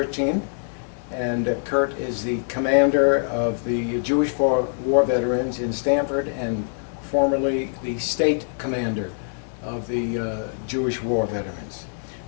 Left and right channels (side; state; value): right; silent; 61 dB below the other